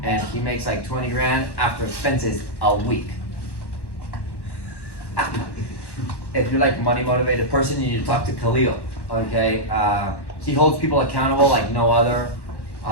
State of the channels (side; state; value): right; late; 1.1 ms